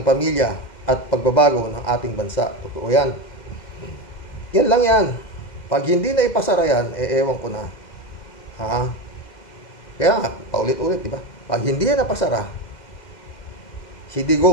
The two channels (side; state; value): right; late; 2.0 ms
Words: pamilya at pagbabago ng ating bansa. Totoo yan. Yan lang yan. Pag hindi na ipasara yan, ewan ko na. Kaya nga, paulit-ulit, di ba? Pag hindi yan napasara, si